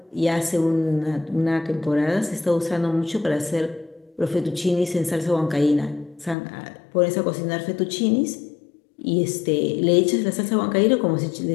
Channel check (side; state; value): right; drops out; at 6.4 s